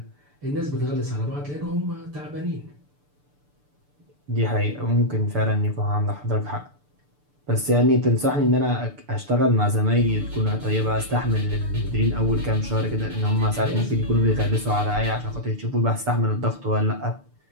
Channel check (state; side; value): late; left; 6.8 ms